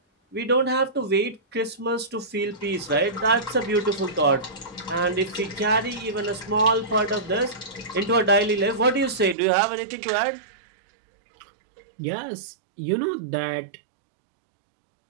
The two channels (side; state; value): left; drops out; at 9.3 s